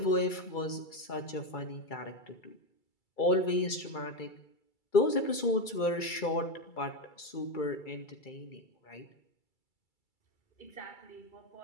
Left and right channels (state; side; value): late; right; 2.3 ms